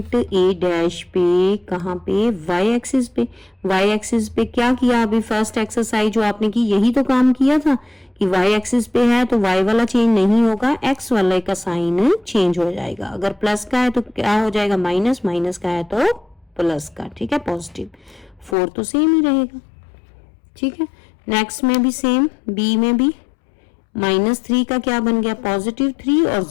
A डैश पे कहाँ पे, y एक्सिस पे। y एक्सिस पे क्या किया अभी फर्स्ट एक्सरसाइज जो आपने की, यही तो काम किया था कि y एक्सिस पे है तो y वाला चेंज नहीं होगा, x वाले का साइन चेंज हो जाएगा। अगर प्लस का है तो क्या हो जाएगा, माइनस, माइनस का है तो प्लस का, ठीक है, पॉजिटिव। 4 तो सेम ही रहेगा, ठीक है। नेक्स्ट में भी सेम, B में भी -3 का क्या बन गया, +3, और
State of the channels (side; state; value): right; drops out; at 18.6 s